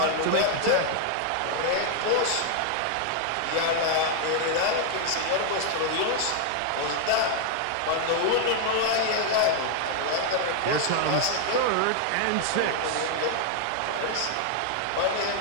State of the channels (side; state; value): both; different; correlation 0.00